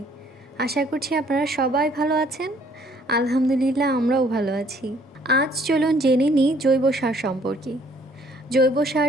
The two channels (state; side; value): normal; both; correlation 0.62